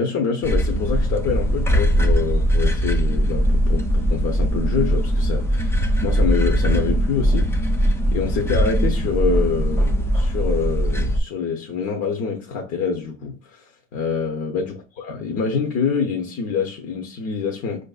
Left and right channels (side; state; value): both; normal; correlation 0.60